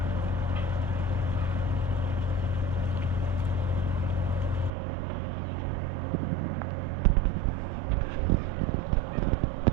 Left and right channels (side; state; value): left; drops out; at 4.7 s